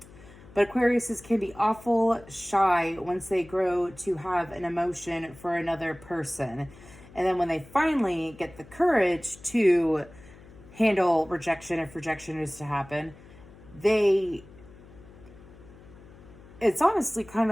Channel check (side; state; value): left; noise; hum, 21 dB below the sound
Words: But Aquariuses can be awful shy once they grow to have an emotion for another person. And then when they finally get the courage to handle rejection, if rejection is to happen, it's honestly kind